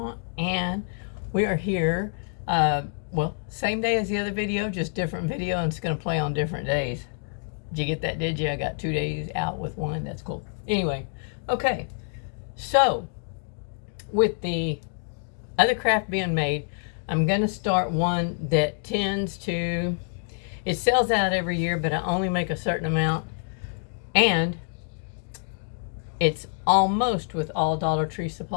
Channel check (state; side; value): silent; right; digital silence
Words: and we are here, well, same day as the other video, just different video, and it's going to play on different days. Did you get that, did you? I got 2 days out with one. That's cool. Anyway, okay, so with the other craft being made, I'm going to start one that tends to, it sells out every year, but I only make a certain amount, and it's almost with all Dollar Tree